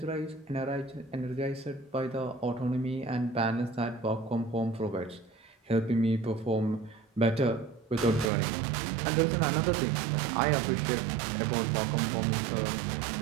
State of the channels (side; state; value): left; drops out; at 8.3 s